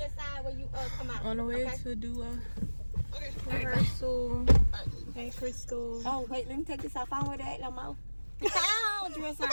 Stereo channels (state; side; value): inverted; both; correlation -1.00